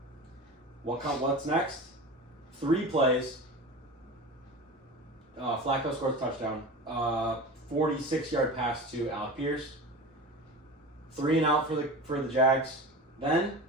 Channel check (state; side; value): normal; both; correlation 0.31